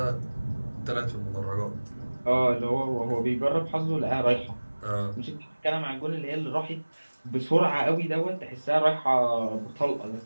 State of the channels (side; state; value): both; inverted; correlation -1.00